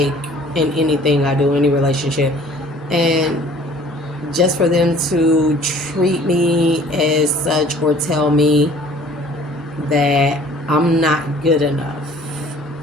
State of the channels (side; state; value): both; normal; correlation 0.52